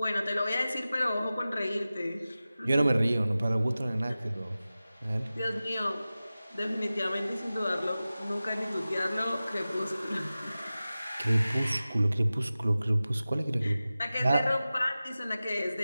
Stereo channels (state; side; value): inverted; both; correlation -0.96